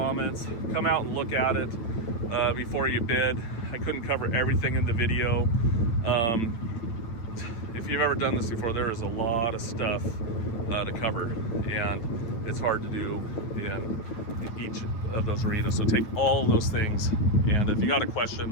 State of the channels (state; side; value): late; right; 8.9 ms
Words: come out and look at it before you bid. I couldn't cover everything in the video. If you've ever done this before, there is a lot of stuff to cover, and it's hard to do in each of those arenas. So take all those things, and if you got a